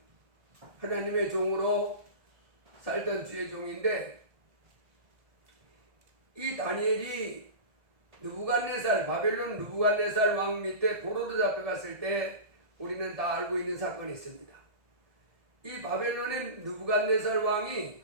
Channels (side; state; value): left; late; 1.7 ms